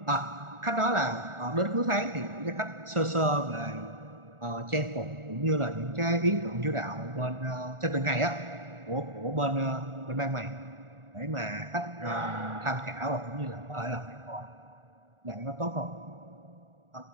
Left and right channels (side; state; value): left; late; 1.4 ms